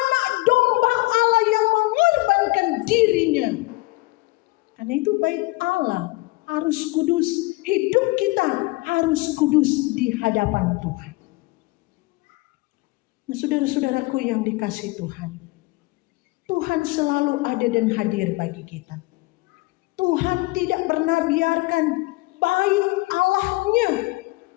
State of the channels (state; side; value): quieter; right; 22.8 dB